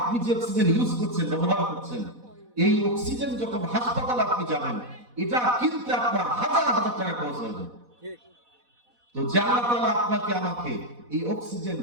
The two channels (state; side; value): late; left; 4.1 ms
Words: যে অক্সিজেন ইউজ করছেন, ব্যবহার করছেন, এই অক্সিজেন যখন হাসপাতালে আপনি যাবেন, এটা কিনতে আপনার হাজার হাজার টাকা খরচ হয়ে যাবে। তো যে আল্লাহ তাআলা আপনাকে আমাকে এই অক্সিজেন